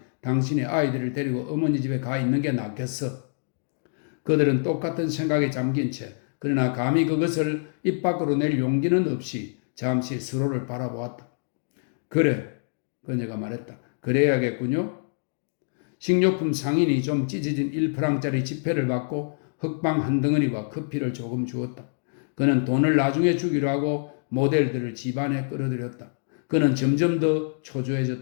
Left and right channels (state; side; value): silent; right; digital silence